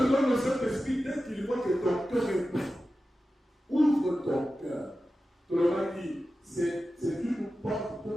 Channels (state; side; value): normal; both; correlation 0.93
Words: donne le Saint-Esprit dès qu'il voit que ton cœur est prêt. Ouvre ton cœur. Tu l'auras dit. C'est une porte